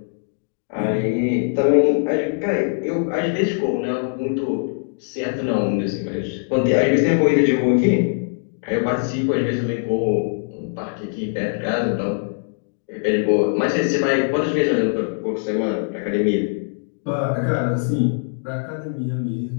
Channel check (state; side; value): silent; right; digital silence